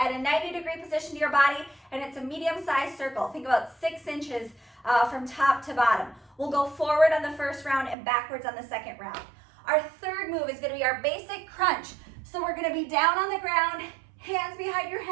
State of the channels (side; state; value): left; drops out; at 8.0 s